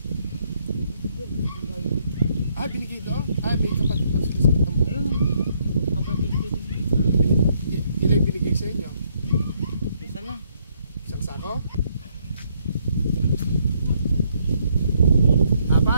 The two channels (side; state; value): both; inverted; correlation -0.71